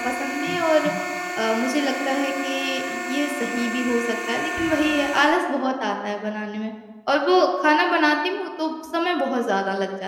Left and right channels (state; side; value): identical; both; correlation 1.00